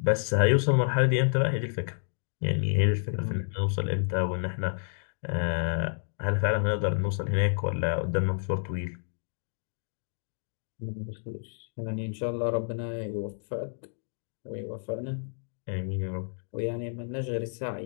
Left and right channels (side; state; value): right; silent; digital silence